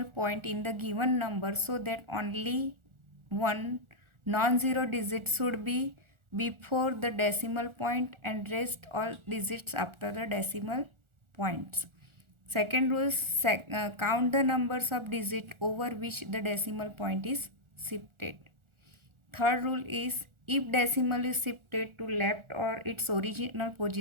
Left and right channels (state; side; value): late; left; 1.4 ms